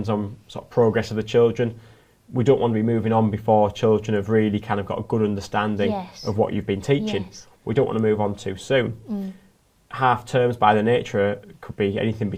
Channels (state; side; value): identical; both; correlation 1.00